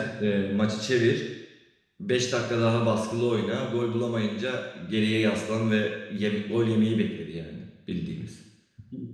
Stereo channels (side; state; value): both; identical; correlation 1.00